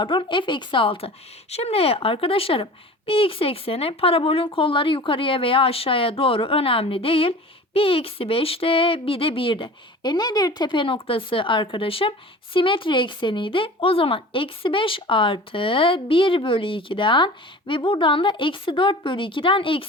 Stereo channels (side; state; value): both; normal; correlation 0.39